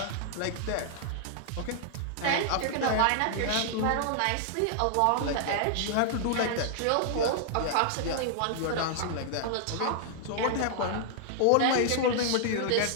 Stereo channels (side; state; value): both; different; correlation -0.01